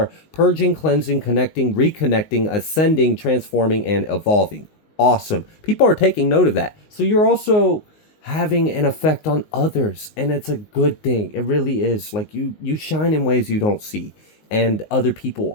purging, cleansing, connecting, reconnecting, ascending, transforming, and evolving. Awesome. People are taking note of that. So you're also having an effect on others, and it's a good thing. It really is. Like you shine in ways you don't see, and other people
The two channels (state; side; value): late; right; 19 ms